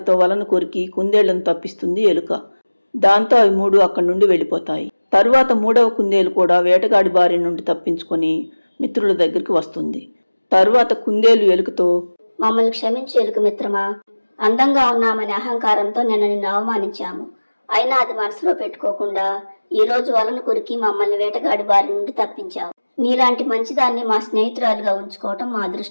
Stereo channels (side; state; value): both; inverted; correlation -1.00